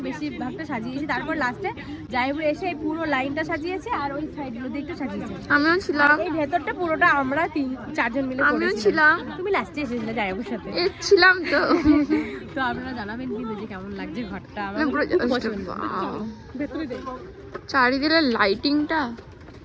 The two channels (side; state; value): both; identical; correlation 1.00